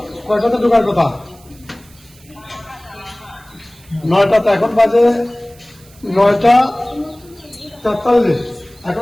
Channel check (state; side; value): noise; right; hiss, 26 dB below the sound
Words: কয়টাতে ঢোকার কথা? 9টাতে, এখন বাজে 9:43,